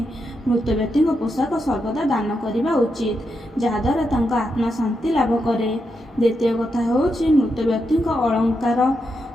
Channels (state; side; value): normal; both; correlation 0.84